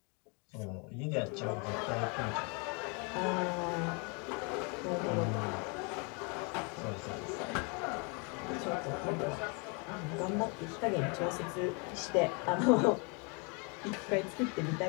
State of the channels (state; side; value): quieter; right; 33.6 dB